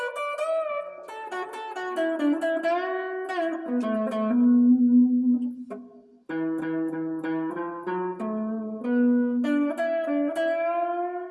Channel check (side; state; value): both; identical; correlation 1.00